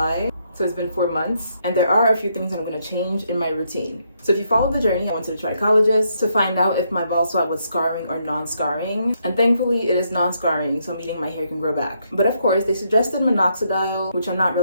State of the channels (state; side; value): inverted; both; correlation -0.76